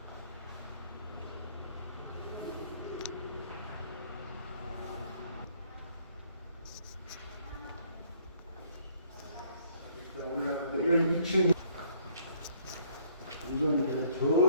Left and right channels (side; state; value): both; inverted; correlation -0.62